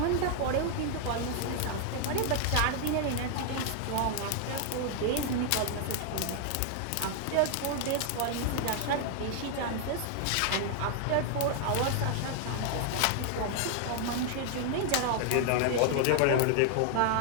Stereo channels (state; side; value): different; both; correlation 0.00